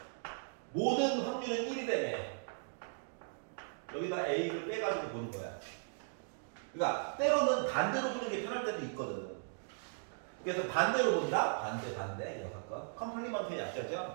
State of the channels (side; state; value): left; silent; digital silence